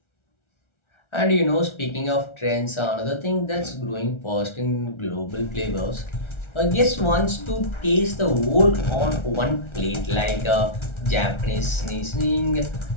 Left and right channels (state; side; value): late; right; 1.4 ms